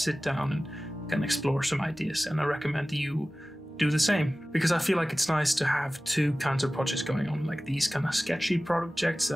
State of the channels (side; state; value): both; normal; correlation 0.97